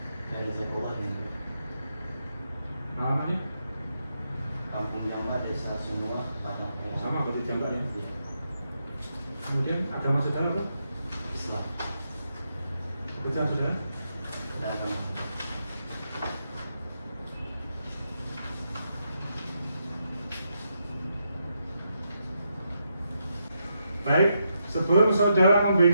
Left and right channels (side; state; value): both; inverted; correlation -0.82